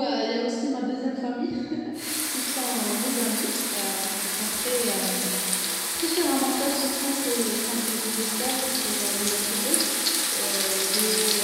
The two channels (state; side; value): identical; both; correlation 1.00